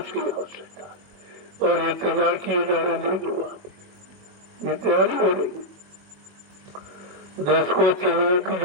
आवश्यकता है। और ये तैयार किए जा रहे देख लो आप, ये तैयारी हो रही है। देश को चलने की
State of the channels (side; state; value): left; late; 21 ms